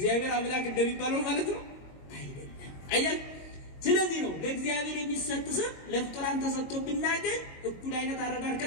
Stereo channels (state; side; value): late; right; 22 ms